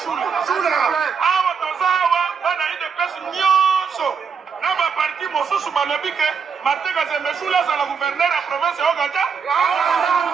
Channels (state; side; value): quieter; left; 6.1 dB